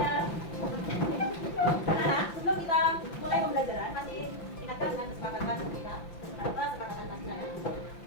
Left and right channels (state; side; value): late; right; 5.9 ms